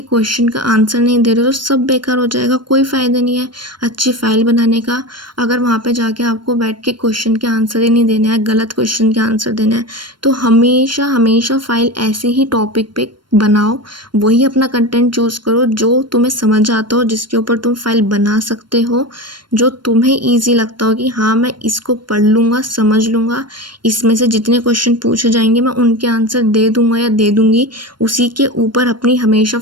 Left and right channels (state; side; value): late; left; 0.72 ms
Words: क्वेश्चन का आंसर नहीं दे रहे तो सब बेकार हो जाएगा, कोई फ़ायदा नहीं है अच्छी फ़ाइल बनाने का। अगर वहाँ पे जाके आपको बैठ के क्वेश्चन के आंसर ही नहीं देने हैं, गलत क्वेश्चन के आंसर देने हैं, तो हमेशा हमेशा फ़ाइल ऐसे ही टॉपिक पे बनाओ, वही अपना कंटेंट चूज़ करो जो तुम्हें समझ आता हो, जिसके ऊपर तुम फाइल बना सकते हो, जो तुम्हें ईजी लगता हो कि हाँ मैं इसको पढ़ लूँगा, समझ लूँगा, इसमें से जितने क्वेश्चन पूछे जाएंगे मैं उनके आंसर दे दूँगा या दे दूँगी, उसी के ऊपर अपनी हमेशा